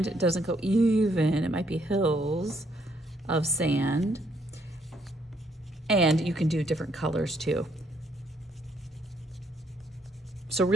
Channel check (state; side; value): normal; both; correlation 0.70